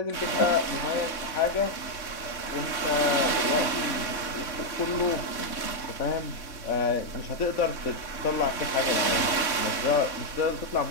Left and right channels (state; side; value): late; right; 3.5 ms